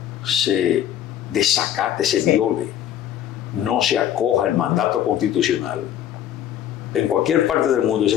se desacate, se viole, no se acoja el mandato constitucional, en cualquier parte del mundo ese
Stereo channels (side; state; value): right; quieter; 10.8 dB